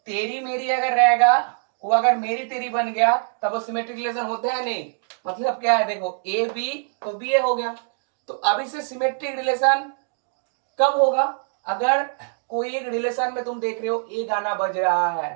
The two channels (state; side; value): silent; left; 63 dB below the other